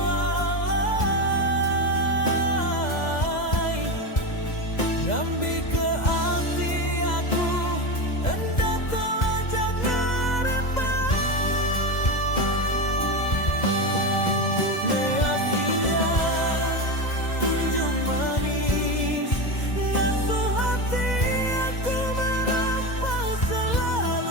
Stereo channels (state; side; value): late; right; 2.0 ms